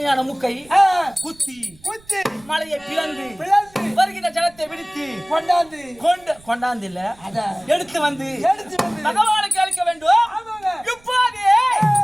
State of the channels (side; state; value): right; noise; rumble, 27 dB below the sound